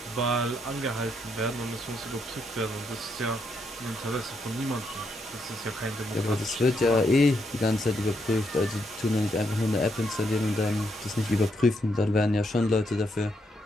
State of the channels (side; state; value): both; normal; correlation 0.78